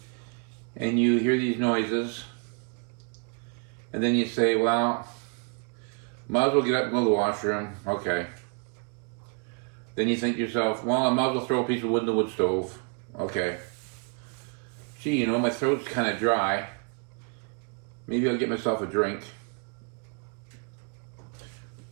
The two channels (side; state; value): left; quieter; 37.9 dB